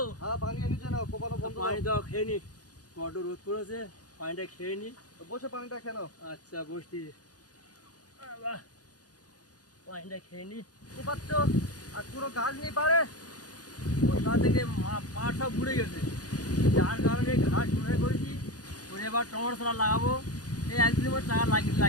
হ্যাঁ পানি এনেছে না, কোপানো বন্ধ পানি করো। দাও, খেয়ে নি। বড্ড রোদ পড়েছে, পানিটা খেয়ে নি। বসে পানিটা কেন? আচ্ছা বসছি। বাহ, পানিটা খেয়ে নি। কোপাচ্ছ আর পুরো গাছ নেই পারে। বর্ষা থেকে পাট সব ঘুরে গেছে, যার কারণে ঘাস ঘুরে করেছি। করে এবার টমেটো চারা লাগাবো। এই একদিনের মধ্যে চারা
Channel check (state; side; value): late; right; 0.68 ms